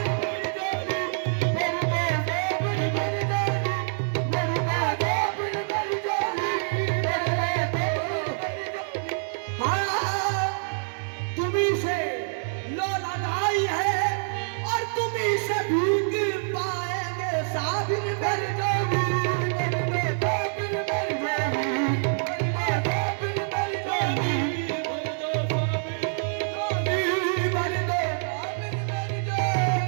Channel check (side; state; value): left; silent; digital silence